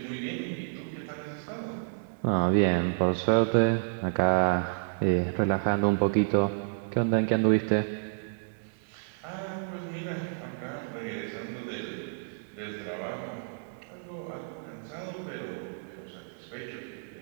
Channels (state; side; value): silent; left; digital silence